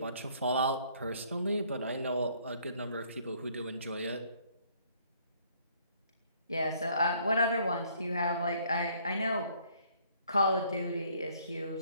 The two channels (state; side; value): inverted; both; correlation -0.63